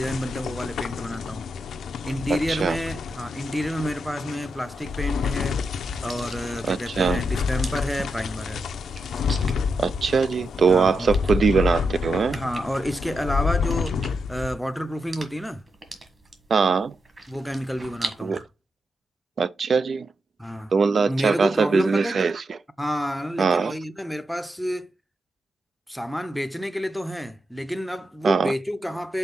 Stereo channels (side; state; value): both; normal; correlation 0.86